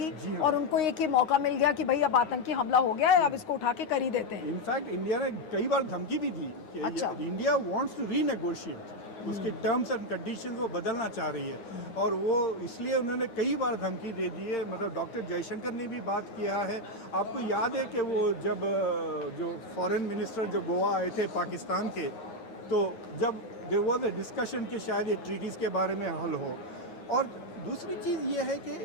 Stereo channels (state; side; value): late; right; 9.6 ms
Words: और उनको एक ही मौका मिल गया कि भाई अब आतंकी हमला हो गया है, अब इसको उठा के कर ही देते हैं। इनफैक्ट इंडिया ने कई बार धमकी भी दी कि अच्छा। इंडिया वांट्स टू रीनेगोशिएट, उसके टर्म्स एंड कंडीशंस वो बदलना चाह रही है, और वो इसलिए उन्होंने कई बार धमकी दे दी है। मतलब डॉक्टर जयशंकर ने भी बात किया है। आपको याद है कि वो जब जो फॉरेन मिनिस्टर जो गोवा आए थे पाकिस्तान के, तो जब देयर वाज अ डिस्कशन कि शायद ये ट्रीटीज़ के बारे में हल हो। और दूसरी चीज़ ये है